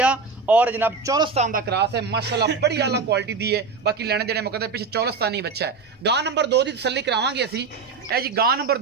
और जनाब चौलस्तान का क्रॉस है माशाल्लाह बड़ी आला क्वालिटी दी है। बाकी लेने देने मुकद्दर पिछे चौलस्तानी बच्चा है। गां नंबर 2 की तसल्ली करावांगे असी। ए जी गां नंबर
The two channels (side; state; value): left; quieter; 4.7 dB